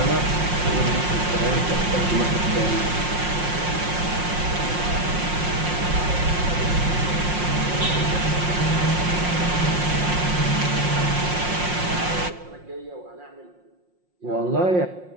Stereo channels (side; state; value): left; late; 5.6 ms